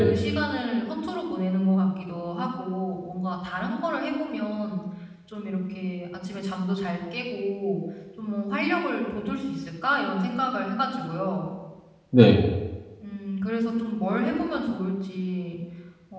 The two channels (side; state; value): both; identical; correlation 1.00